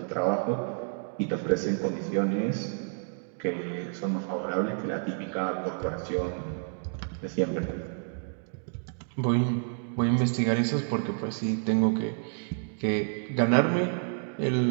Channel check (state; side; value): silent; left; 58 dB below the other